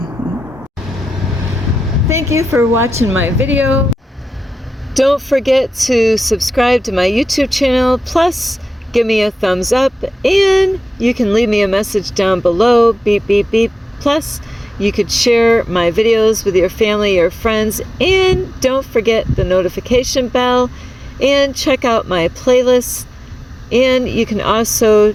Thank you for watching my video. Don't forget to subscribe to my YouTube channel, plus give me a thumbs up, and you can leave me a message down below, beep, beep, beep. Plus, you could share my videos with your family or friends, and don't forget the notification bell, and check out my playlist. And you can also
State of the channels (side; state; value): both; normal; correlation 0.93